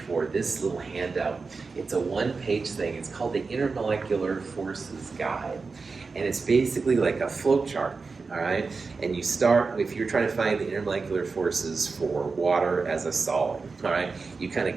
for this little handout. It's a one-page thing. It's called the Intermolecular Forces Guide. And it's basically like a flowchart, all right? And you start, if you're trying to find the intermolecular forces for water as a solid, all right? You kind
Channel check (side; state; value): left; quieter; 4.4 dB